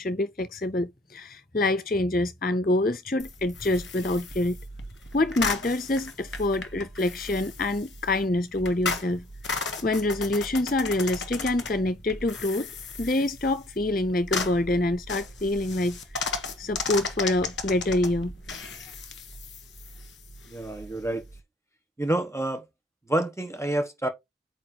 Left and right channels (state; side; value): normal; both; correlation 0.59